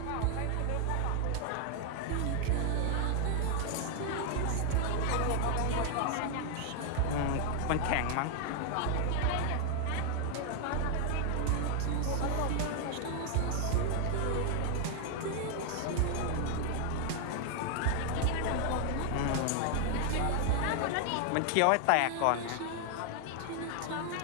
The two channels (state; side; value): different; both; correlation 0.00